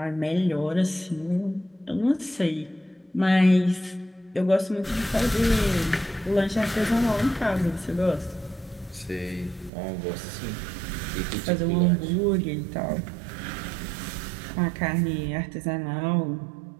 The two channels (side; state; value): left; drops out; at 9.7 s